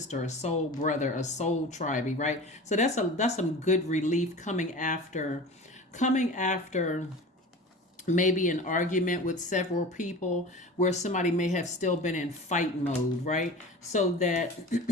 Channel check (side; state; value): both; normal; correlation 0.36